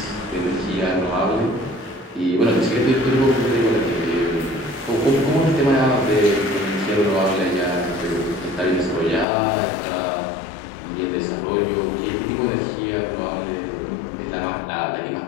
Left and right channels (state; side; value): drops out; right; at 9.2 s